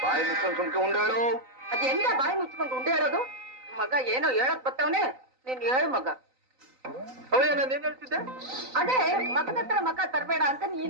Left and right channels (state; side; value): late; left; 3.9 ms